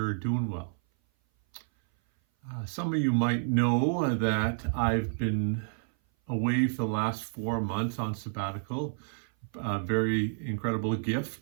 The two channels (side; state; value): left; silent; 56 dB below the other